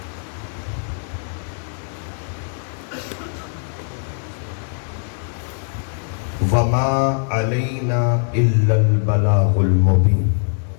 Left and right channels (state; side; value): silent; right; 57 dB below the other